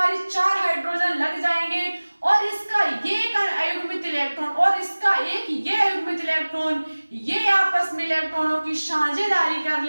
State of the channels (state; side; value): inverted; both; correlation -1.00